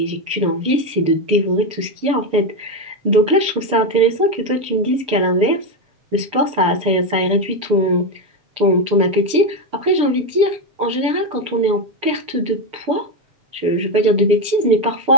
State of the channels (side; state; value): left; late; 6.8 ms